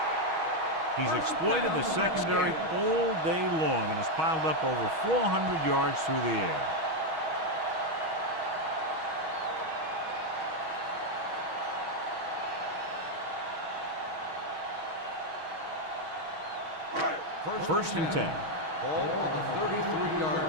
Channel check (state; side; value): late; left; 6.3 ms